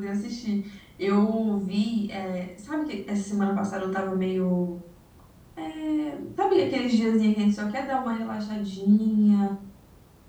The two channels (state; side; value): identical; both; correlation 1.00